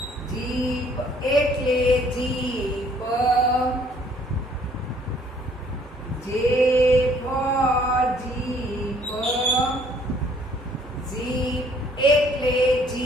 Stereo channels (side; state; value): both; normal; correlation 0.61